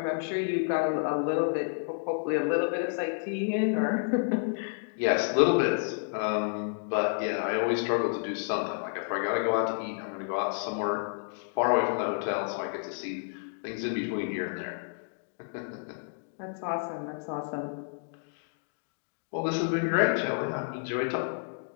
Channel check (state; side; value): silent; right; digital silence